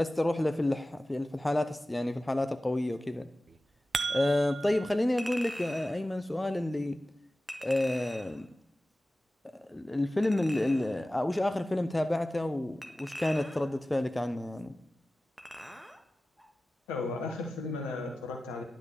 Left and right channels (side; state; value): both; normal; correlation 0.96